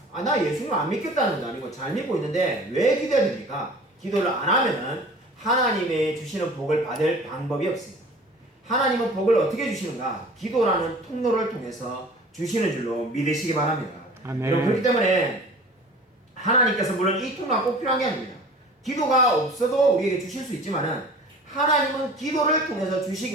나 예수님 안 믿겠다는 것도 아니고 잘 믿고 있는데 왜 기도해야 됩니까? 기도를 안 하면은 하나님의 주시는 복을 받을 방법이 없습니다. 하나님은 복을 어떻게 주시는가? 기도라는 통로를 통해서 주시는 줄로 믿으시기 바랍니다. 아멘. 여러분, 그렇기 때문에 하나님께서 물론 이 통로가 꼭 필요한 게 아닙니다. 기도가 없어도 우리에게 주실 수 있지만은 하나님은 기도를 통해서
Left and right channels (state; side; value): normal; both; correlation 0.44